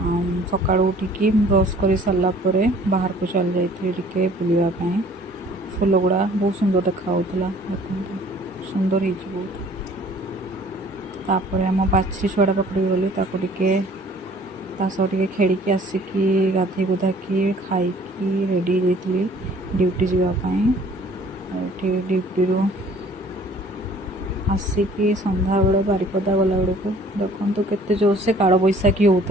सकाळु उठिकी ब्रश कर सारा बाहर को चल जाइए बुलावाई। फूल गुड़ा बहुत सुंदर देखा देखो सुंदर हो बहुत। तापर आम बाछी छुआटा पकड़ गली टे खेल आसिकी गाधे गुधाकी खाई रेडी जाइली ड्यूटी जावाई। ड्यूटी आसिकी संध्या बेले बारिपदा गला बेलू देखो केते जोर से काल बैशाखी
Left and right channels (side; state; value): both; normal; correlation 0.54